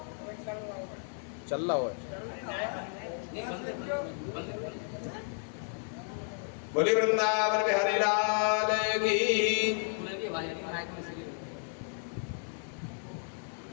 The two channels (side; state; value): right; silent; 56 dB below the other